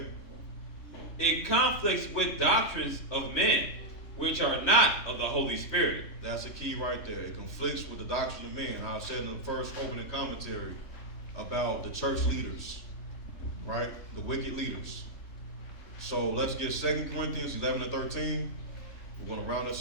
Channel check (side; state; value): right; late; 3.1 ms